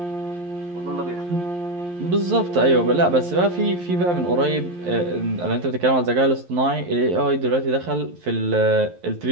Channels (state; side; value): late; left; 11 ms